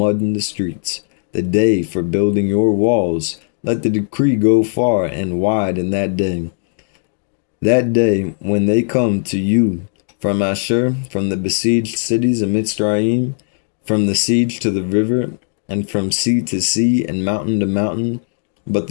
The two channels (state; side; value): silent; right; digital silence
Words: in the streets. The day for building your walls. Let the decree go far and wide in that day. That day when they come to you from Ashur, from the besieged cities of Mitzrayim, from the siege to the river, and from sea to sea and mountain to mountain. But